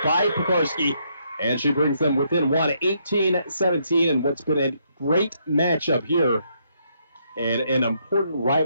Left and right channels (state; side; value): inverted; both; correlation -0.74